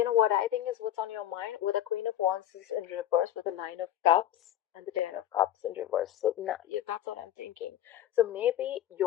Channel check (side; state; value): right; quieter; 11.9 dB